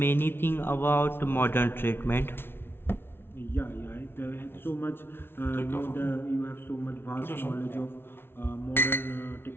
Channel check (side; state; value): right; late; 0.11 ms